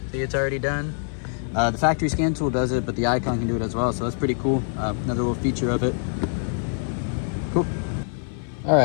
see it's already done. The factory scan tool does it, but the icon can do it as well, so that's pretty cool. Another little feature of it. Cool. All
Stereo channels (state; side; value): silent; right; 61 dB below the other